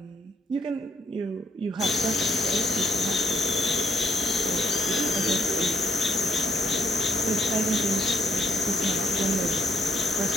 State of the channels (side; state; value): both; normal; correlation 0.69